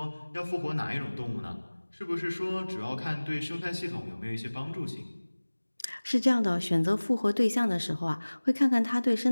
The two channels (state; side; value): inverted; both; correlation -1.00